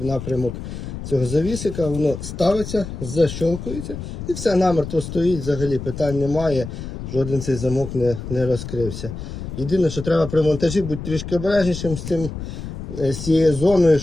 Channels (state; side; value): noise; left; rumble, 8 dB below the sound